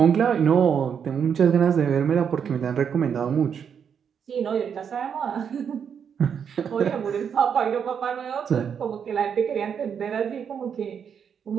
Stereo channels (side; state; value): left; quieter; 7.5 dB